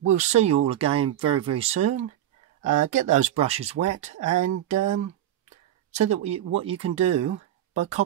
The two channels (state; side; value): quieter; left; 12.0 dB